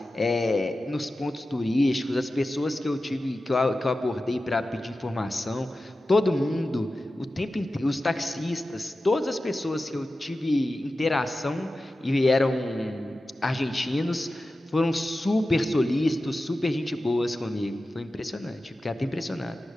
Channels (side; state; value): both; normal; correlation 0.94